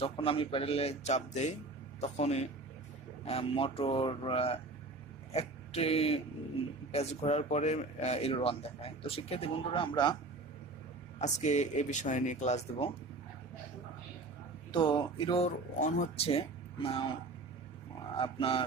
আমি প্যাডেলে চাপ দেই তখনই মোটর একটি পেজ ঘোরার পরে error-01 দেখায়। তো শিক্ষার্থী বন্ধুরা, আমরা আজকে এ বিষয়ে নিয়ে ক্লাস দেব। তো error-01 হচ্ছে আপনার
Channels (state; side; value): quieter; left; 3.3 dB